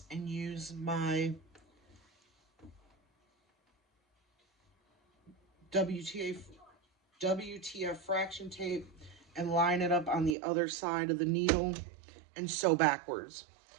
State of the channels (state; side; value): drops out; left; at 10.4 s